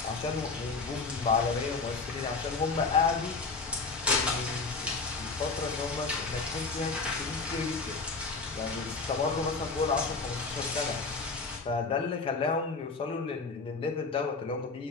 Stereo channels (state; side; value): quieter; right; 4.2 dB